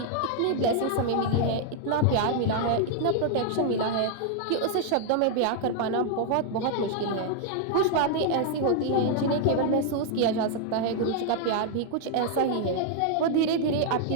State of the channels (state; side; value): different; both; correlation 0.00